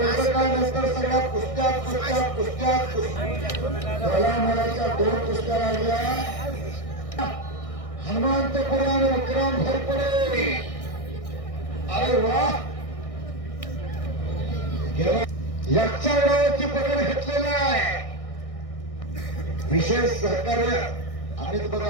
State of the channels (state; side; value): late; right; 1.6 ms